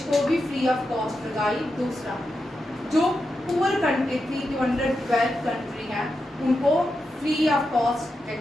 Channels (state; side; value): normal; both; correlation 0.88